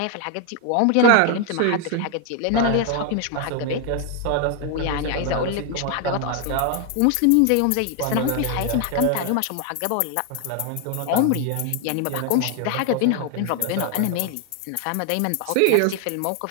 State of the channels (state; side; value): different; both; correlation 0.01